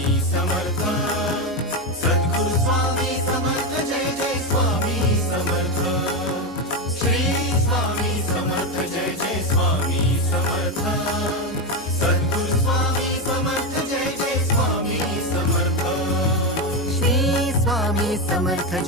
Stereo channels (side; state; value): both; normal; correlation 0.11